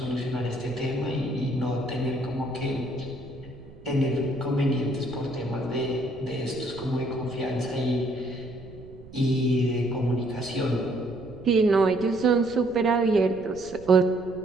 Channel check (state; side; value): noise; right; rumble, 19 dB below the sound